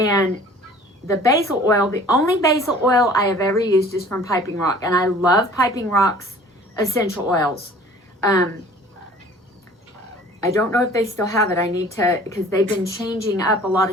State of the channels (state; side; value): normal; both; correlation 0.49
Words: the basil oil, the only basil oil I have ever used is from Piping Rock. And I love Piping Rock's essential oils. I don't know if they still have it. I need to, because they've been changing up a lot